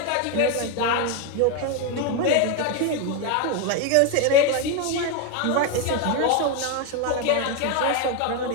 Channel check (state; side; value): different; both; correlation 0.02